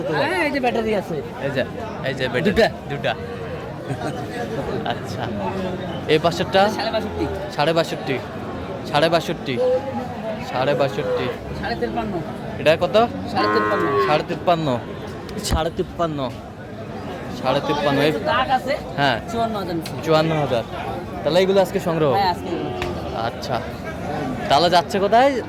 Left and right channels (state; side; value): identical; both; correlation 1.00